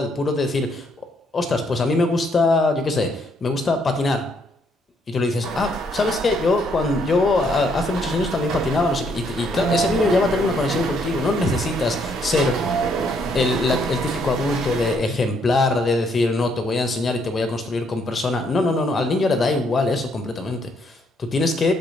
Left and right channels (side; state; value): both; normal; correlation 0.71